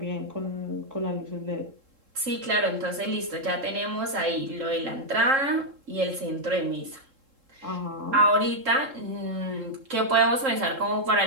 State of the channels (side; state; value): left; late; 3.7 ms